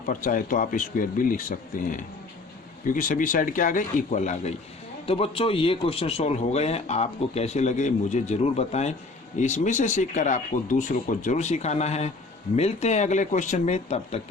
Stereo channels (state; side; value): quieter; right; 3.5 dB